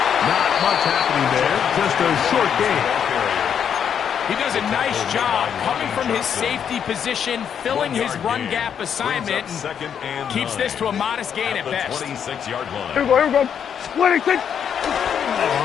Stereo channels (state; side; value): quieter; right; 8.1 dB